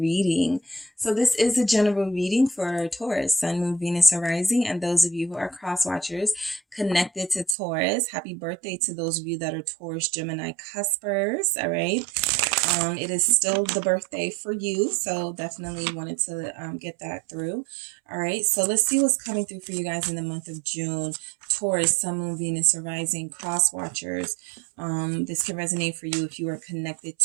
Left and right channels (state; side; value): drops out; left; at 7.6 s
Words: So this is a general reading for Taurus, Sun, Moon, Venus, and Rising, and those of you who are cross watchers connected to Taurus, happy birthday to those of you that are Taurus, Gemini cuspers, all right? It is still the birthday for you, so definitely wanted to get that through. All right, so let's see what's coming through for you guys in the month of June. Taurus, Sun, Moon, Venus, or Rising, cross watchers. This can resonate for you if you are connected